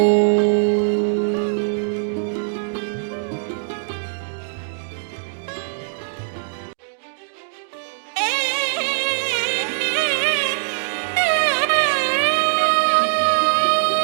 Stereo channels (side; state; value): left; silent; digital silence